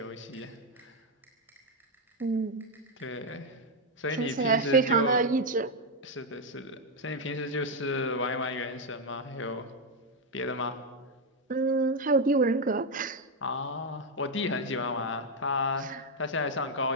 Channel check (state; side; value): normal; both; correlation 0.03